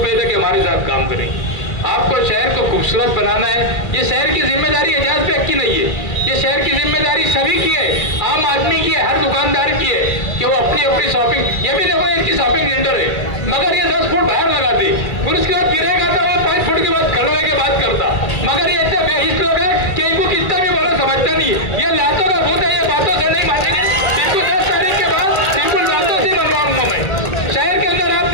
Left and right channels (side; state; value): right; late; 2.3 ms